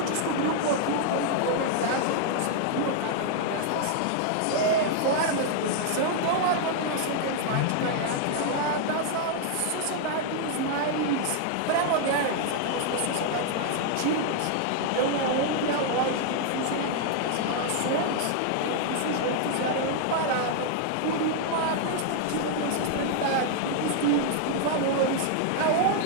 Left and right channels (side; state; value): both; different; correlation 0.00